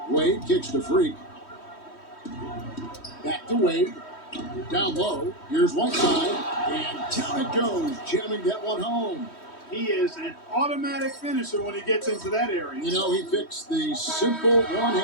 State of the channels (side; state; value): right; late; 3.1 ms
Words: Wade kicks to Freak. Back to Wade. Down low. Here's Whiteside. And down it goes. Jamming that one home. He is an automatic finisher when he gets into that area. You know, he fixed the simple